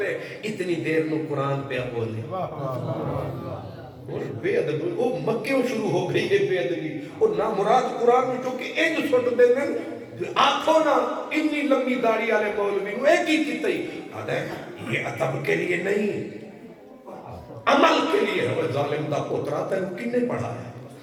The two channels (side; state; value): both; identical; correlation 1.00